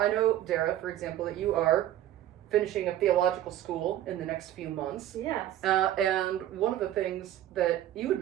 know, Darrah, for example, that you are finishing a theological school in the next few months. Yes. And one of the things that you had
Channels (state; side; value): quieter; left; 12.6 dB